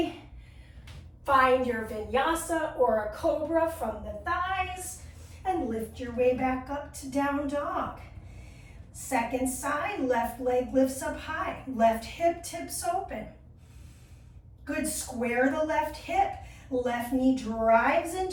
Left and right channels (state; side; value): identical; both; correlation 1.00